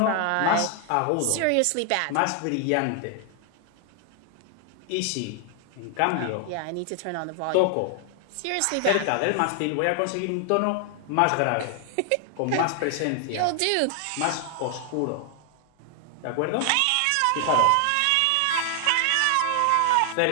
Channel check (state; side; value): different; both; correlation 0.00